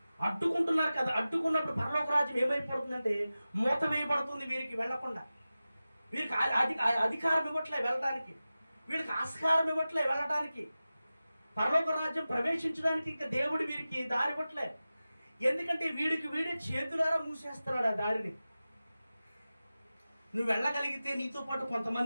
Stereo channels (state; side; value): inverted; both; correlation -0.95